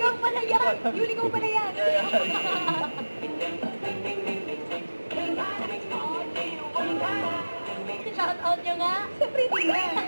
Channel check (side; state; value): both; inverted; correlation -1.00